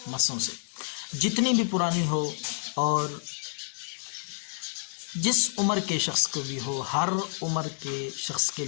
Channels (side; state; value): right; silent; digital silence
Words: مسوں سے، جتنی بھی پرانی ہو اور جس عمر کے شخص کو بھی ہو، ہر عمر کے شخص کے